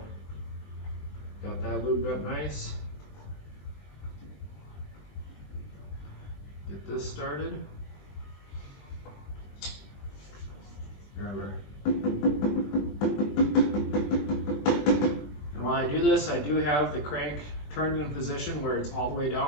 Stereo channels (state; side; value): late; right; 20 ms